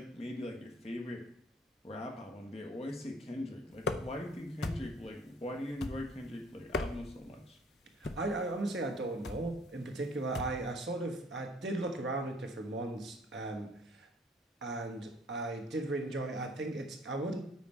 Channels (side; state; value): both; normal; correlation 0.57